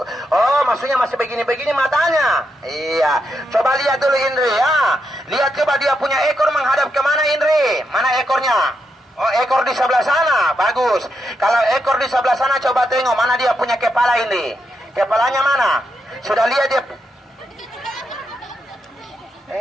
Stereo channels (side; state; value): both; normal; correlation 0.83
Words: Oh, maksudnya masih begini-begini matanya. Iya. Coba lihat dulu Indri ya. Lihat coba dia punya ekor menghadap kemana Indri? Mana ekornya? Oh, ekor di sebelah sana. Bagus. Kalau ekor di sebelah sana coba tengok mana dia punya kepala Indri. Kepalanya mana? Sudah lihat dia?